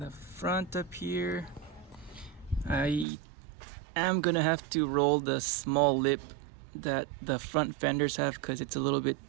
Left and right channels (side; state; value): left; drops out; at 3.1 s